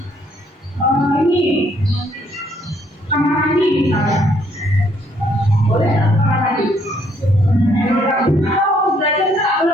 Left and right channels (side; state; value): both; normal; correlation 0.67